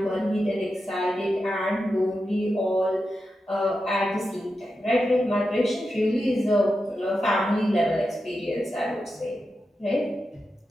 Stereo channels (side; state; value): both; normal; correlation 0.89